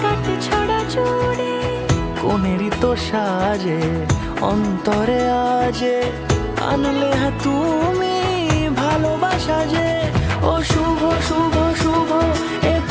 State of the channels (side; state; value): both; identical; correlation 1.00